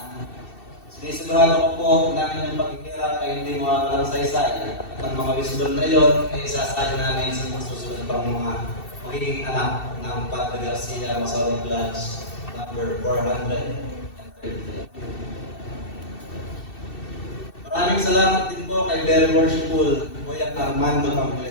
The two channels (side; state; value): right; late; 2.7 ms